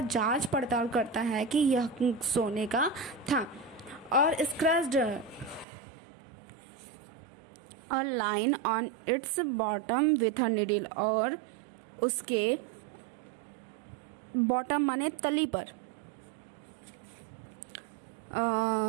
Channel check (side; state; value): left; drops out; at 5.7 s